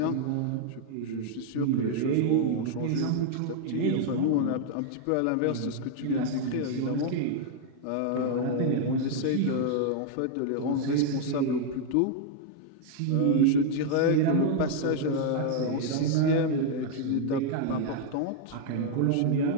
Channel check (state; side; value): different; both; correlation 0.00